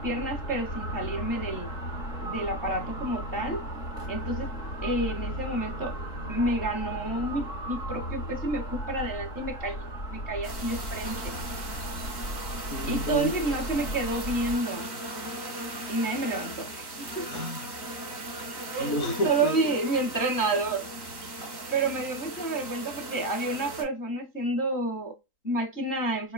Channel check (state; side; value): late; right; 3.8 ms